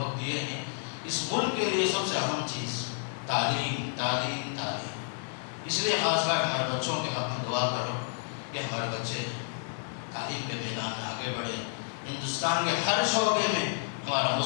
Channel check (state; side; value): silent; right; 58 dB below the other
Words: دیے ہیں، اس ملک کے لیے سب سے اہم چیز تعلیم، تعلیم، تعلیم۔ اس لیے خاص کر ہمارے بچوں کے حق میں دعا کرو کہ ہمارے بچے تعلیم کے میدان میں آگے بڑھے، ہندوستان کے ہر شعبے میں ہمارا